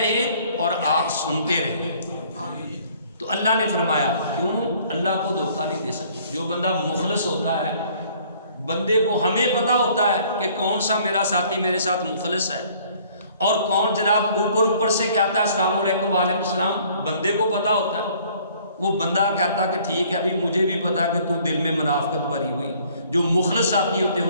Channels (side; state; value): both; inverted; correlation -0.58